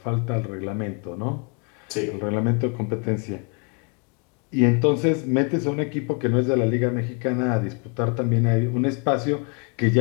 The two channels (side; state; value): right; quieter; 35.5 dB